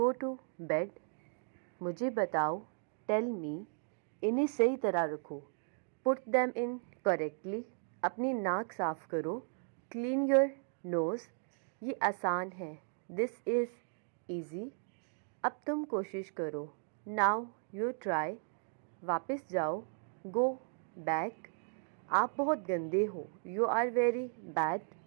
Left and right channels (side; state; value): left; silent; 54 dB below the other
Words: to bed. मुझे बताओ, टेल मी। इन्हें सही तरह रखो, पुट दैम इन करेक्टली। अपनी नाक साफ करो, क्लीन योर नोज़। ये आसान है, दिस इज़ ईजी। अब तुम कोशिश करो, नाउ यू ट्राई। वापस जाओ, गो बैक। आप बहुत गंदे हो, यू आर वेरी बैड।